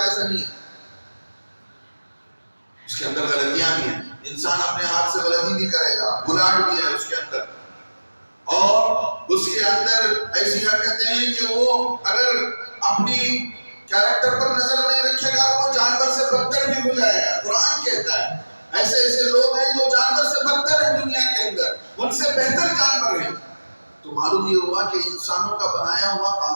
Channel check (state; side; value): inverted; both; correlation -1.00